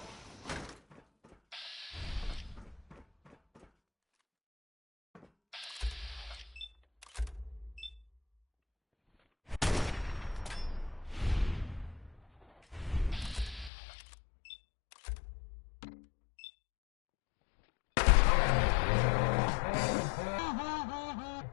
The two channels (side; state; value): right; drops out; at 13.7 s